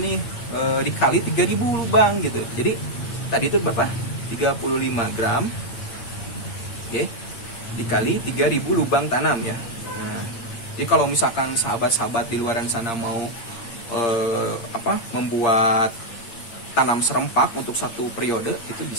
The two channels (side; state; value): right; late; 8.6 ms